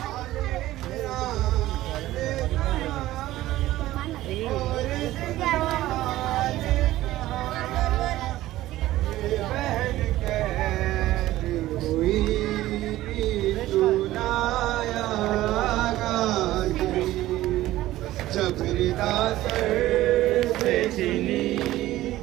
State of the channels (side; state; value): left; quieter; 15.6 dB